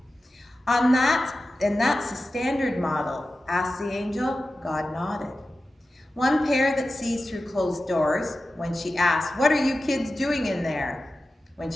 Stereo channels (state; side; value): normal; both; correlation 0.94